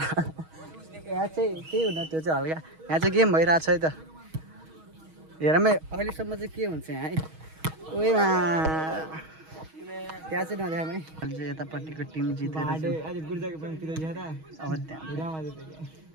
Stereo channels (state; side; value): late; left; 6.3 ms